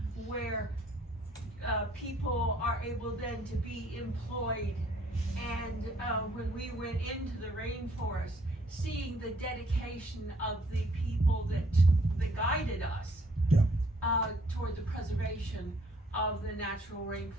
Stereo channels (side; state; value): both; normal; correlation 0.63